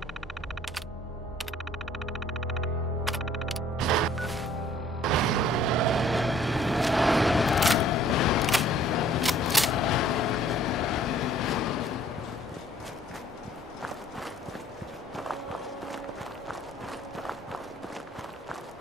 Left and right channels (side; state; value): both; normal; correlation 0.57